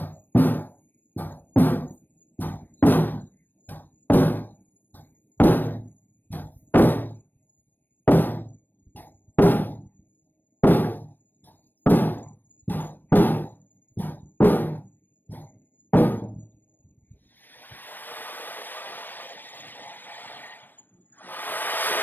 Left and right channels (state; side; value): late; right; 0.092 ms